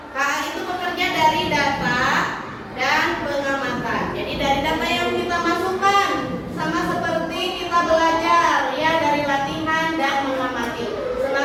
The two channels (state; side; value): identical; both; correlation 1.00